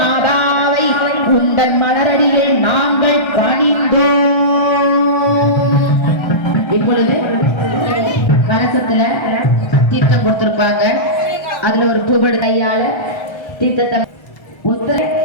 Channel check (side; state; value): right; late; 1.3 ms